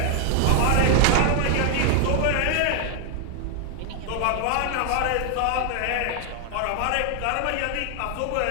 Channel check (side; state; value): both; different; correlation 0.00